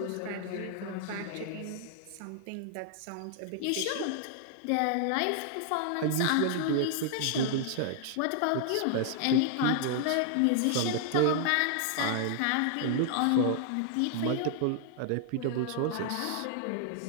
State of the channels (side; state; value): both; different; correlation -0.01